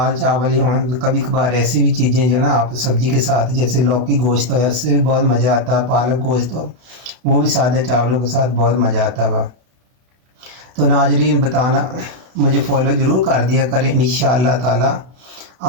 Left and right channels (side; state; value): left; late; 32 ms